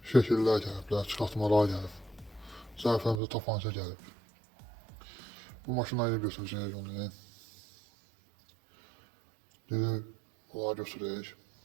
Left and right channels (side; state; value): left; drops out; at 3.2 s